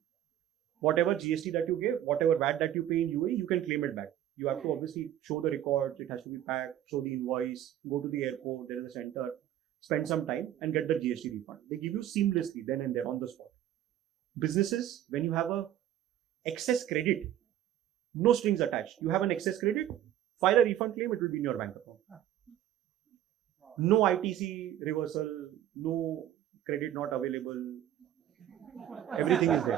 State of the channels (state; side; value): quieter; left; 11.8 dB